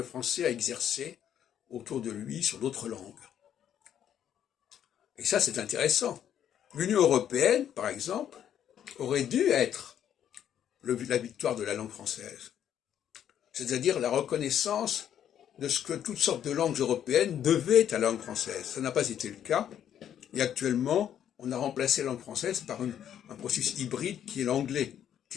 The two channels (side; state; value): right; quieter; 9.9 dB